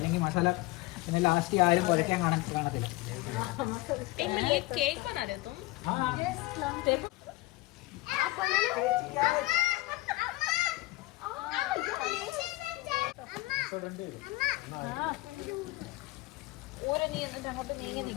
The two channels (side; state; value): right; quieter; 19.7 dB